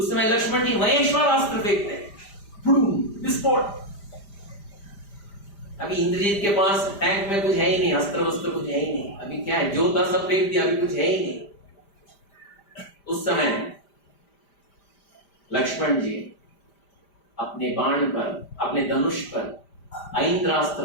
समय लक्ष्मण जी महेश्वरास्त्र फेंकते हैं, विस्फोट। अभी इंद्रजीत के पास टैंक में कुछ है ही नहीं, अस्त्र वस्त्र कुछ है ही नहीं। अभी क्या है, जो था सब फेंक दिया, अभी कुछ है ही नहीं। उस समय लक्ष्मण जी अपने बाण पर, अपने धनुष पर ऐन्द्रास्त्र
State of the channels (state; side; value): late; right; 5.0 ms